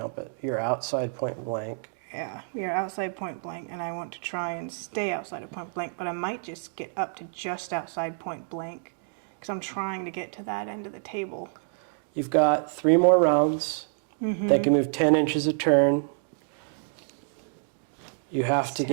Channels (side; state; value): left; silent; digital silence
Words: it. You're outside point blank. Yeah, we are outside point blank, and I want to try and stay outside of point blank, but I might just get up to just outside point blank because I'm trying to get to that end of the table. You've got 3 more rounds. They can move 10 inches a turn. You have to